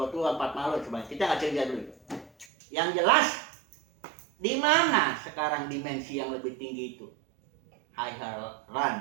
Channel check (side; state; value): left; drops out; at 2.5 s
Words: tua, 4 malu sebanyak. Kita nggak cerita dulu. Yang jelas, di mana sekarang dimensi yang lebih tinggi itu? Higher run,